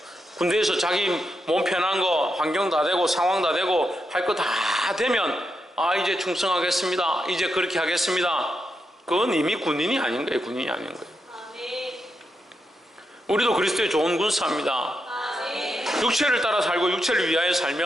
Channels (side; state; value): both; normal; correlation 0.84